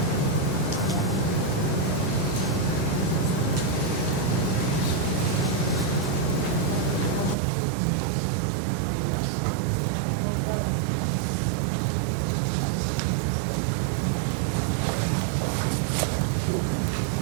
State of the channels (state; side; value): drops out; left; at 7.4 s